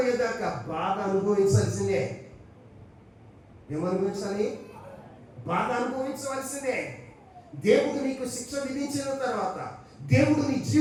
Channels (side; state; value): both; identical; correlation 1.00